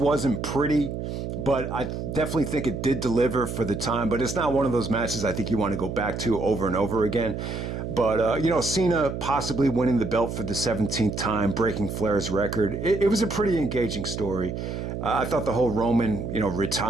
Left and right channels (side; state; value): right; noise; hum, 5 dB below the sound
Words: pretty, but I definitely think it did deliver for the time. But it's not one of those matches I think you want to go back to over and over again. But, Cena possibly winning the belt for the 17th time, breaking Flair's record. It was a pretty engaging story. I thought the whole Roman,